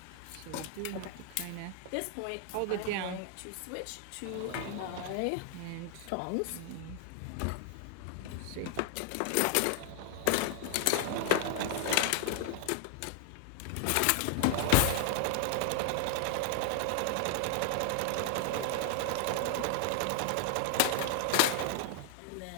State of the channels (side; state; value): both; different; correlation 0.00